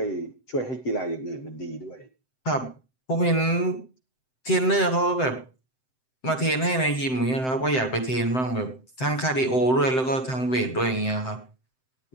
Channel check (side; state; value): right; late; 7.8 ms